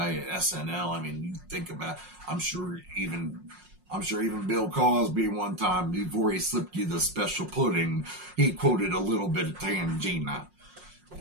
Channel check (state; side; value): late; left; 5.5 ms